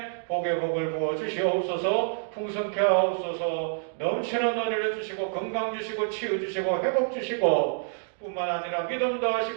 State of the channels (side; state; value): left; silent; digital silence